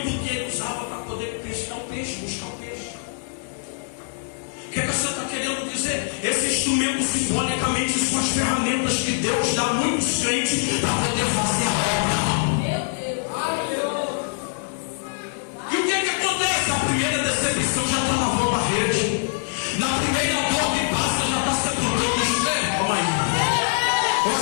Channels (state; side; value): silent; right; digital silence